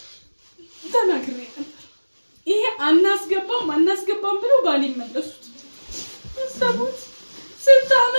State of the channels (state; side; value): inverted; both; correlation -1.00